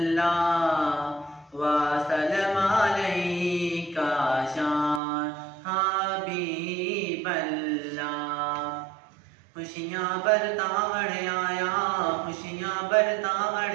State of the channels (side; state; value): left; drops out; at 5.0 s